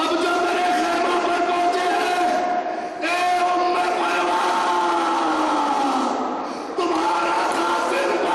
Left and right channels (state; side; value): identical; both; correlation 1.00